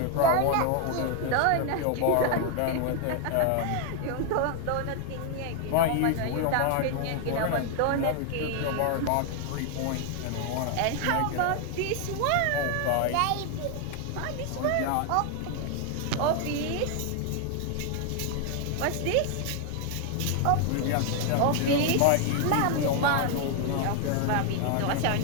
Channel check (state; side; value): different; both; correlation 0.00